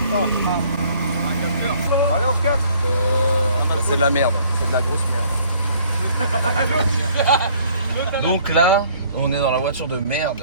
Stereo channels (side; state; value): both; inverted; correlation -0.59